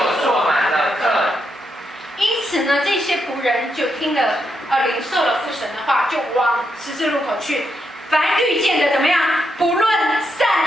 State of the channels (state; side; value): normal; both; correlation 0.82